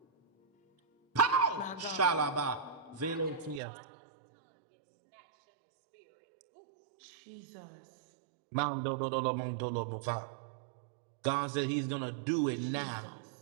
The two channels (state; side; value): drops out; left; at 3.6 s